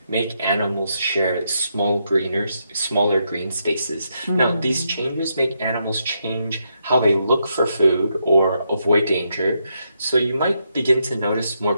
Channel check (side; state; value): both; inverted; correlation -0.80